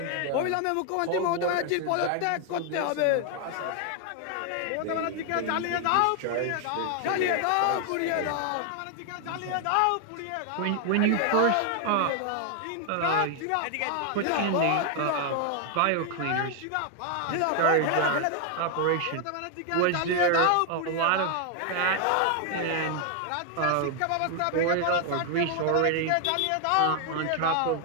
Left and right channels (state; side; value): different; both; correlation 0.00